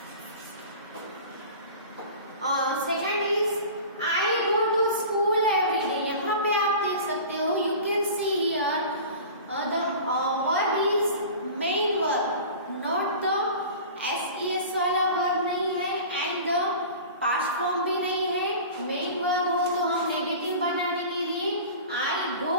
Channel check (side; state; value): both; inverted; correlation -0.37